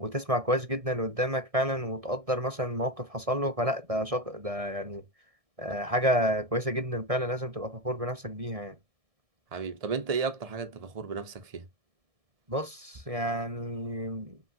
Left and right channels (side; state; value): left; late; 1.6 ms